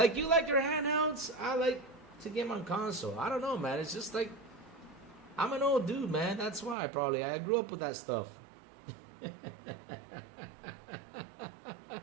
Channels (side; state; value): left; drops out; at 6.8 s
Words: you like your handhelds, I like to game on console. I don't know, man. It's just like I'm an old dude, man. That's why I grew up with that stuff.